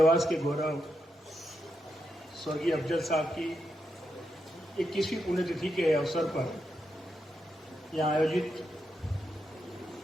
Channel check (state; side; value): normal; both; correlation 0.84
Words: के गौरव स्वर्गीय अफजल साहब की 21वीं पुण्यतिथि के अवसर पर यहाँ आयोजित